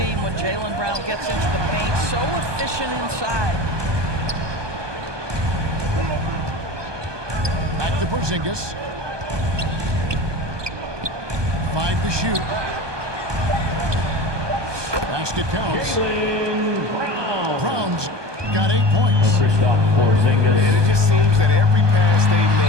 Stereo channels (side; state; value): left; late; 1.2 ms